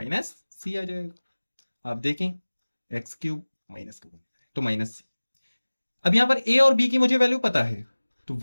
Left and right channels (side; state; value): both; inverted; correlation -1.00